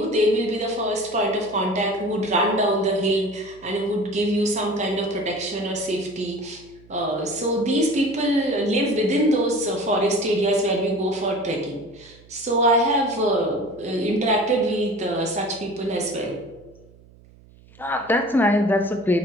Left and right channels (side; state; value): right; noise; hum, 25 dB below the sound